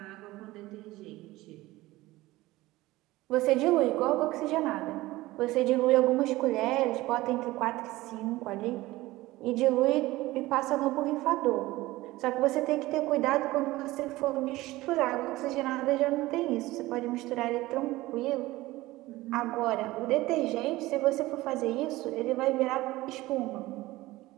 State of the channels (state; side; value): quieter; left; 18.5 dB